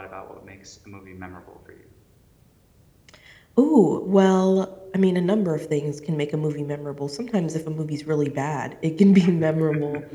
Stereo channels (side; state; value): both; identical; correlation 1.00